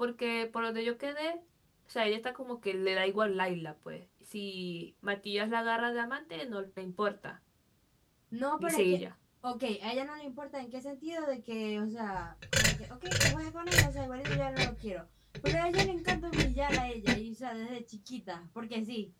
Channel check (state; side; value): identical; both; correlation 1.00